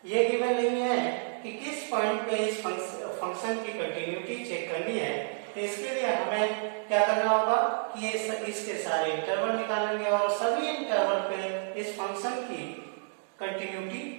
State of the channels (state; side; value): silent; left; digital silence